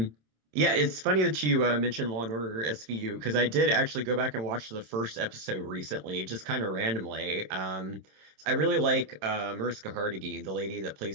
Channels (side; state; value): left; late; 26 ms